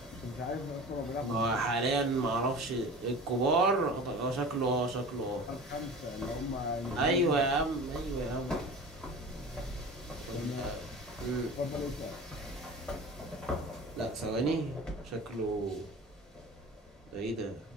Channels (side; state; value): both; normal; correlation 0.37